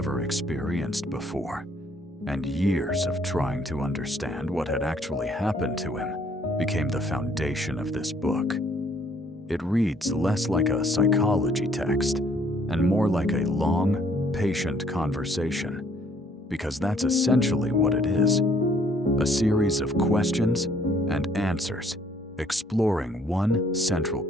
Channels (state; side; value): normal; both; correlation 0.63